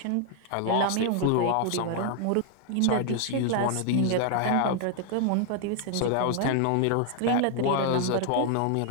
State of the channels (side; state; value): both; different; correlation 0.00